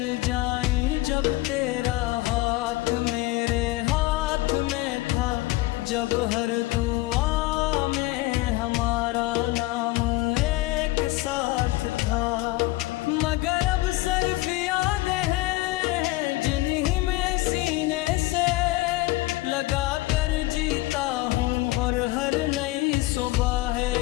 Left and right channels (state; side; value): quieter; right; 19.0 dB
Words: जाएं जब तेरा हाथ मेरे हाथ में था, जब हर दुआ में हमारा नाम एक साथ था। मगर अब सिर्फ यादें हैं जिन्हीं में सीने से लगा कर जीता हूँ, और हर नई सुबह